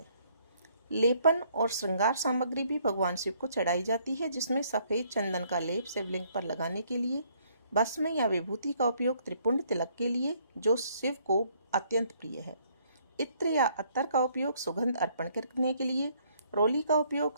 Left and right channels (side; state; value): both; inverted; correlation -0.66